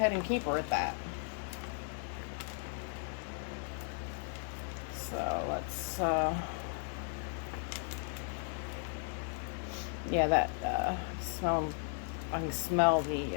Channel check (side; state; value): right; silent; 54 dB below the other